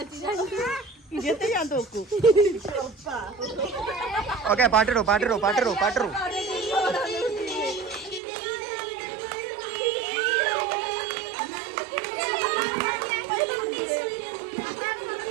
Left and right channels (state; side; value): drops out; left; at 8.2 s